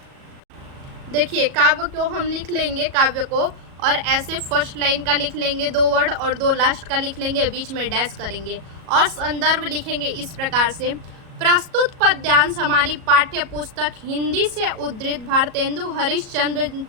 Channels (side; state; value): left; late; 37 ms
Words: देखिए काव्य को हम लिख लेंगे, काव्य को, और ऐसे फर्स्ट लाइन का लिख लेंगे 2 वर्ड और 2 लास्ट का लिख लेंगे, बीच में डैश करेंगे और संदर्भ लिखेंगे इस प्रकार से। प्रस्तुत पद्यांश हमारी पाठ्य पुस्तक हिंदी से उद्धृत भारतेंदु हरिश्चंद्र